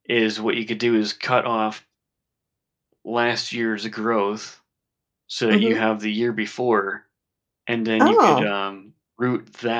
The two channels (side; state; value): both; identical; correlation 1.00